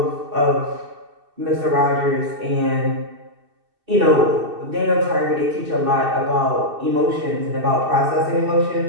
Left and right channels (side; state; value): left; late; 2.6 ms